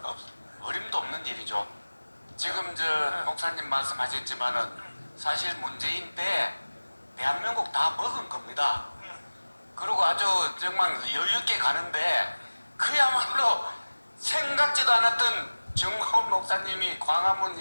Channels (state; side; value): inverted; both; correlation -1.00